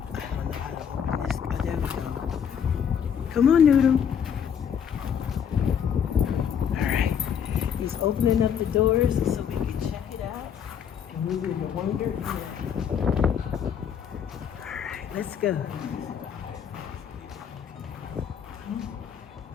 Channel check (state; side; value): quieter; right; 8.0 dB